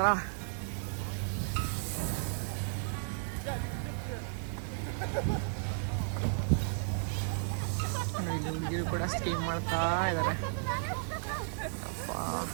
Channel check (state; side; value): silent; left; digital silence